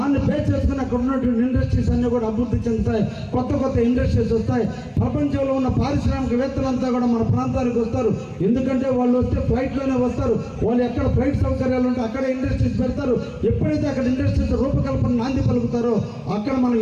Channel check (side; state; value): both; identical; correlation 1.00